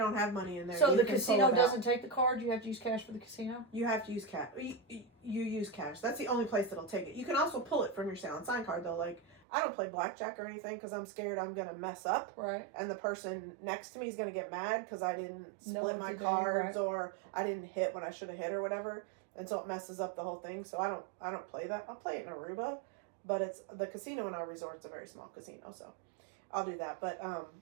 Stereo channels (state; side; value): drops out; left; at 9.4 s